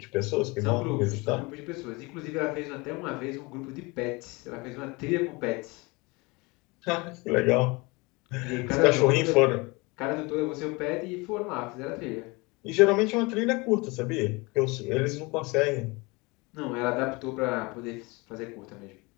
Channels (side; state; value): right; quieter; 25.8 dB